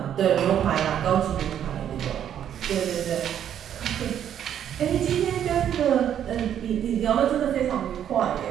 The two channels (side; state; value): left; quieter; 9.8 dB